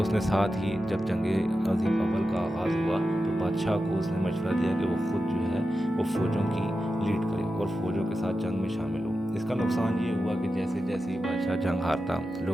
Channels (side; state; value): both; normal; correlation 0.91